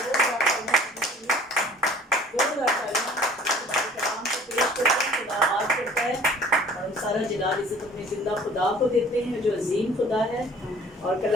सारा जलाल इज़्ज़त अपने ज़िंदा खुदा को देते हैं जो अजीम खुदा है। और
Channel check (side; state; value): both; normal; correlation 0.50